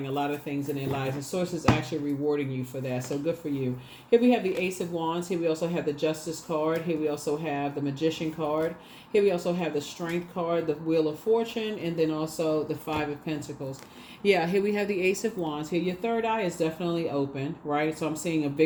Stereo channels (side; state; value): both; identical; correlation 1.00